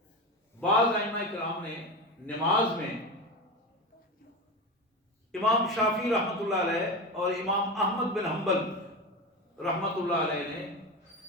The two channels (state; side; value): normal; both; correlation 0.22